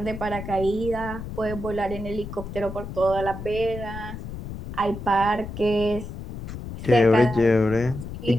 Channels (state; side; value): noise; left; rumble, 9 dB below the sound